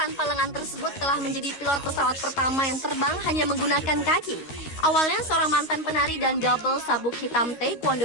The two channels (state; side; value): late; right; 13 ms